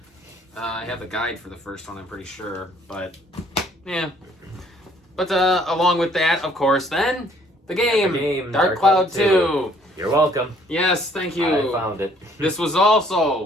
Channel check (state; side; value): normal; both; correlation 0.61